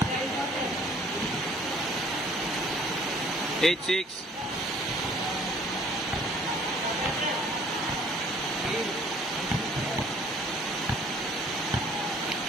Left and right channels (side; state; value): both; normal; correlation 0.56